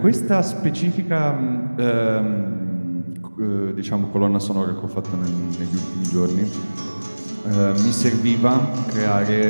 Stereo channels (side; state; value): both; inverted; correlation -1.00